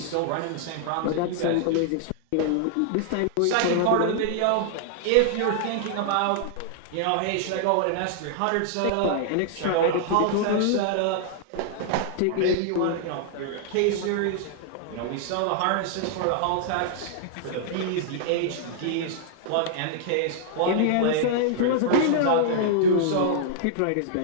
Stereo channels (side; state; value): both; different; correlation -0.01